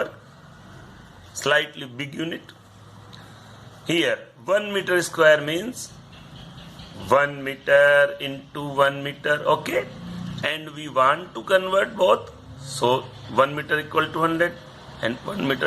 slightly big unit. Here 1 meter square means 1 meter into 1 meter. Okay, and we want to convert both, so 1 meter equal to 100 and 1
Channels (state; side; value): identical; both; correlation 1.00